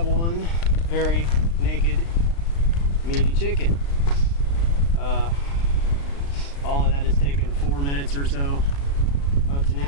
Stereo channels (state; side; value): late; right; 36 ms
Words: one very naked, meaty chicken. All of that has taken 4 minutes or so up to